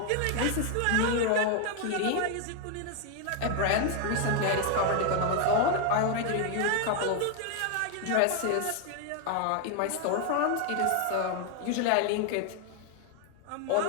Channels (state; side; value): different; both; correlation 0.00